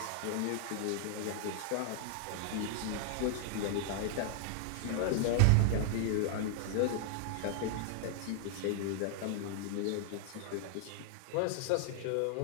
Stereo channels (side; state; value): both; different; correlation 0.00